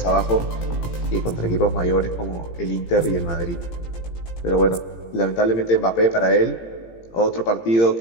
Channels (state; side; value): late; right; 17 ms